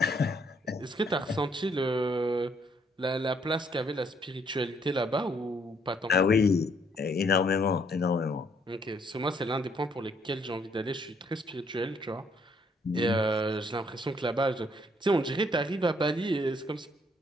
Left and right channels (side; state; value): both; normal; correlation 0.68